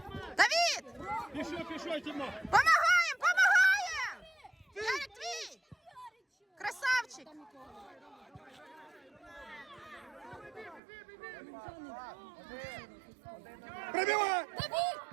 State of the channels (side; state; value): left; drops out; at 10.8 s